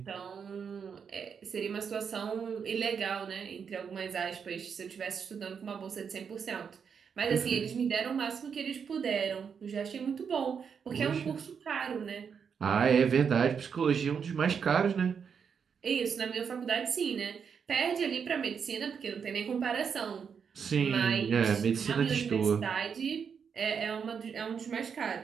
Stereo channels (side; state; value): left; quieter; 6.7 dB